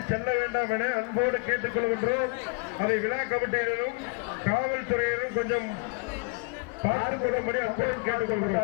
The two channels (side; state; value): right; quieter; 32.0 dB